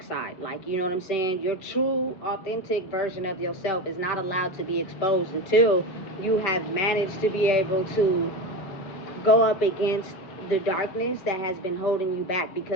side. Like, you know what I'm saying? Your true, authentic version of yourself is not allowed to be exposed until you have managed to be able to go up against the darkness that has been holding you back.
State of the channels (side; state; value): right; late; 5.3 ms